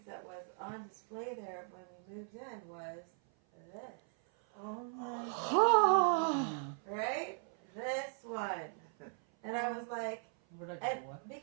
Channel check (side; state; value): left; silent; 52 dB below the other